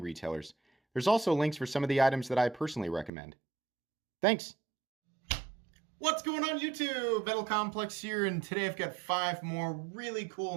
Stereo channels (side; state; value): left; drops out; at 3.1 s